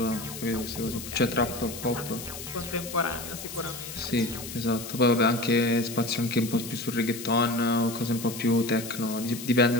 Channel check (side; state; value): left; noise; hiss, 10 dB below the sound